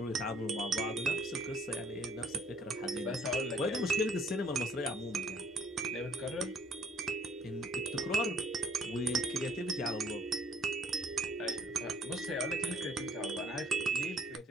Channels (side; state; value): both; normal; correlation 0.59